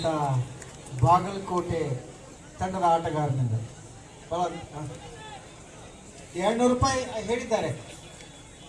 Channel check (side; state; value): both; identical; correlation 1.00